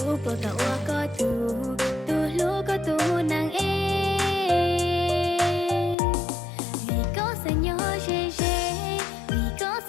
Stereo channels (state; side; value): drops out; right; at 6.0 s